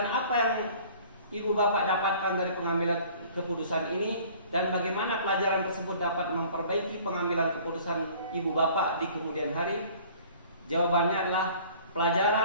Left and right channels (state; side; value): inverted; both; correlation -0.50